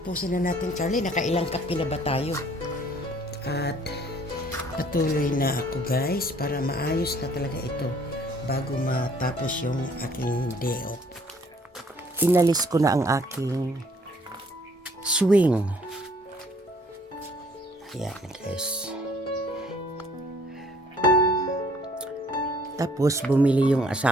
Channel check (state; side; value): normal; both; correlation 0.60